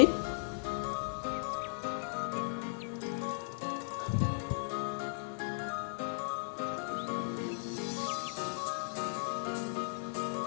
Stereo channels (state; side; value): silent; right; digital silence